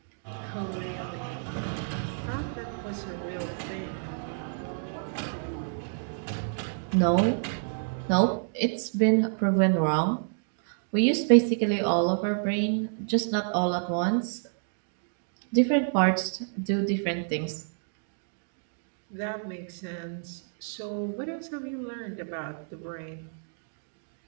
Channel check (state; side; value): silent; left; digital silence